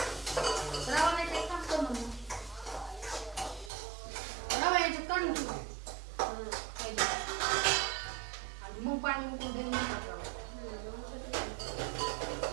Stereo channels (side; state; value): left; drops out; at 3.7 s